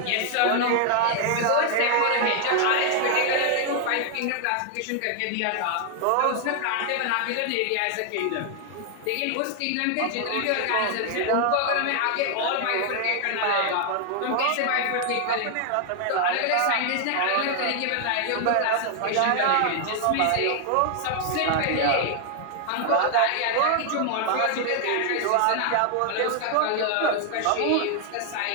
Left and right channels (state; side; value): different; both; correlation 0.00